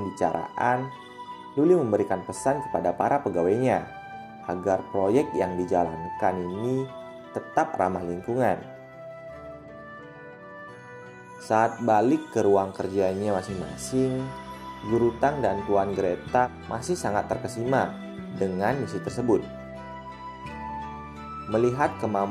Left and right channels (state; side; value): identical; both; correlation 1.00